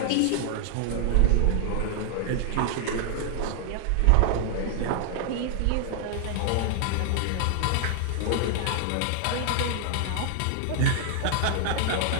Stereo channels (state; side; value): different; both; correlation 0.00